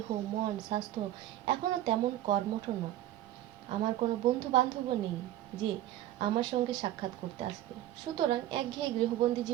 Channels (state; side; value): quieter; left; 13.3 dB